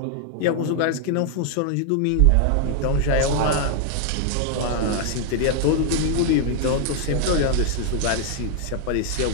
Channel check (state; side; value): different; both; correlation 0.00